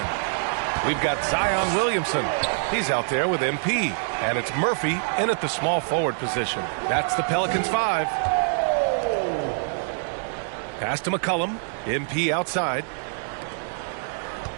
We've got Zion Williamson. He's out there with MP. And it's Murphy in at the small forward position. That's the Pelicans 5. Pass to McCollum. MP outside.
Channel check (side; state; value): left; silent; digital silence